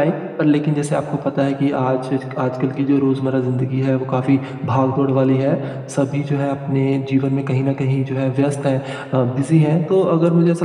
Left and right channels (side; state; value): both; identical; correlation 1.00